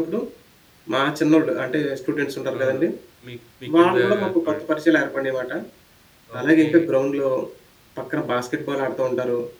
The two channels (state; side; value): identical; both; correlation 1.00